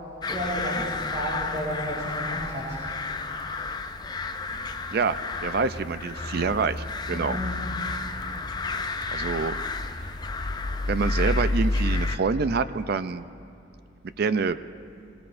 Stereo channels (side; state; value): both; normal; correlation 0.25